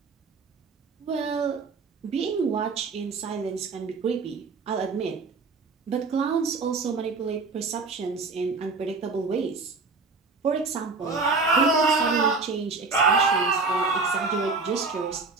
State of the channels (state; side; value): quieter; left; 4.2 dB